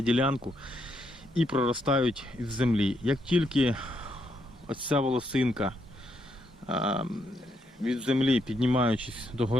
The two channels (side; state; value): both; normal; correlation 0.77